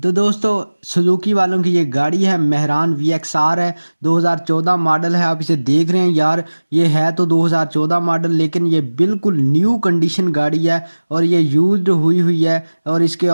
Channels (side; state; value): both; inverted; correlation -1.00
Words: दोस्तों सुजुकी वालों की ये गाड़ी है मेहरान VXR है, 2014 मॉडल है। आप इसे देख रहे हैं यार, ये है तो 2014 मॉडल लेकिन ये बिल्कुल न्यू कंडीशन गाड़ी है और ये यूज्ड हुई है। और इसके